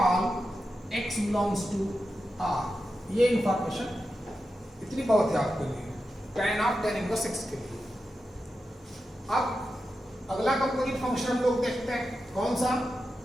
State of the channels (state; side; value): normal; both; correlation 0.90